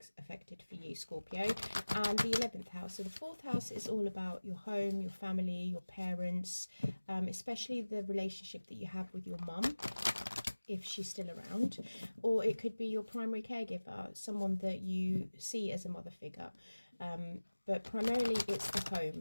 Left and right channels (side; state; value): both; inverted; correlation -1.00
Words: affected for you, Scorpio, and the 11th house. So the 4th house is all about your home, your family, your parents, especially the relationship that you have with your mum, if she's still around, or it could be your primary caregiver, someone that you see as a mother figure. But primarily it's the